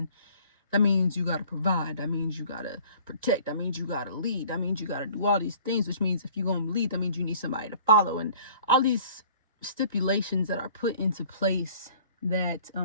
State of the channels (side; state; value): both; inverted; correlation -0.52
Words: that means you got to provide. That means you got to protect. That means you got to lead. That means you got to do all these things, which means if you're going to lead, that means you need somebody to follow. And all these stipulations that are put into place that